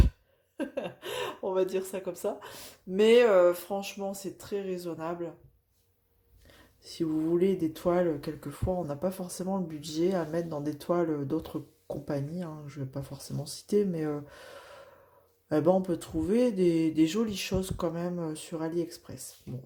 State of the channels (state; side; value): identical; both; correlation 1.00